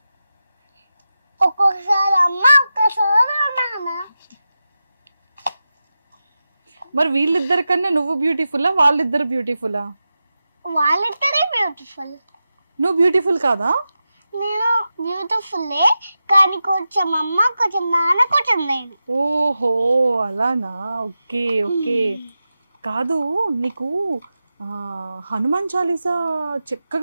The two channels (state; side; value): inverted; both; correlation -0.92